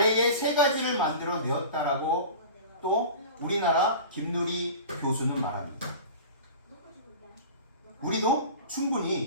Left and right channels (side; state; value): both; inverted; correlation -0.36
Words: 3가지를 만들어 내었다라고 또 우리나라 김누리 교수는 말합니다. 우리도